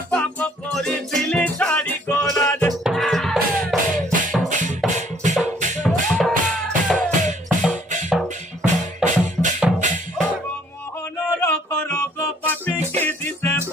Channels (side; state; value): both; normal; correlation 0.61